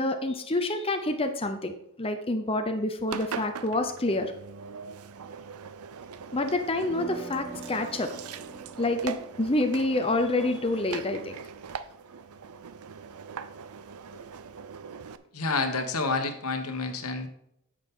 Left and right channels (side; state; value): both; normal; correlation 0.30